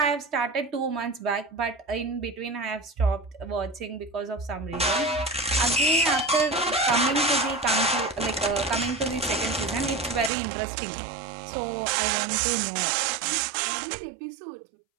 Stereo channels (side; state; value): left; drops out; at 10.3 s